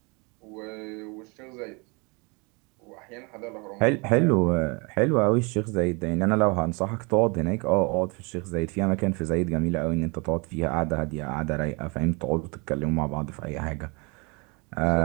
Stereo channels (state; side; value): quieter; left; 30.2 dB